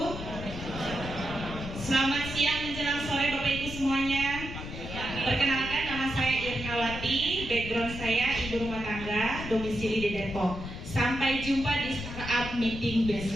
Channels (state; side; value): noise; left; rumble, 9 dB below the sound